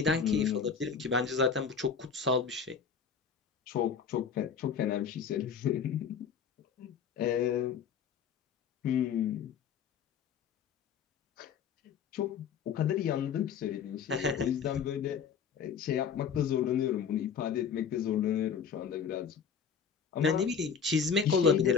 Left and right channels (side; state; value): right; quieter; 6.8 dB